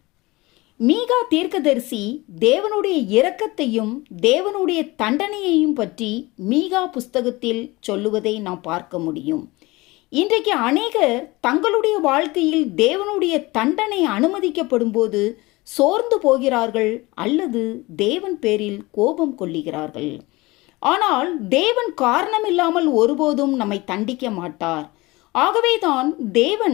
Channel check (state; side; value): quieter; right; 21.8 dB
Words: மீகா தீர்க்கதரிசி தேவனுடைய இரக்கத்தையும் தேவனுடைய தண்டனையையும் பற்றி மீகா புஸ்தகத்தில் சொல்லுவதை நாம் பார்க்க முடியும். இன்றைக்கு அநேகர் தங்களுடைய வாழ்க்கையில் தேவனுடைய தண்டனை அனுமதிக்கப்படும் போது சோர்ந்து போகிறார்கள் அல்லது தேவன் பேரில் கோபம் கொள்ளுகிறார்கள். ஆனால் தேவன் காரணமில்லாமல் ஒருபோதும் நம்மை தண்டிக்க மாட்டார். ஆகவேதான்